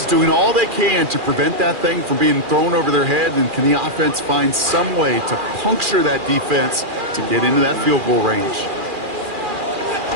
is doing all they can to prevent that thing from being thrown over their head, and can the offense find some way to puncture that defense to get into that field goal range?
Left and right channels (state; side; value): late; left; 2.4 ms